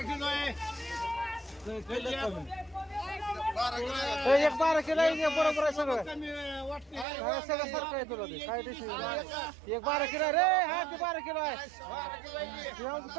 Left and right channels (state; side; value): drops out; left; at 7.1 s